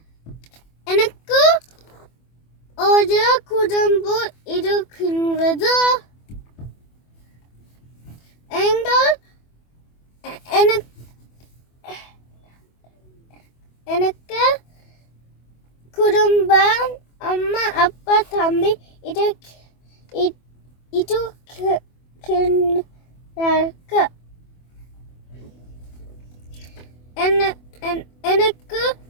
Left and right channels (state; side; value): late; right; 24 ms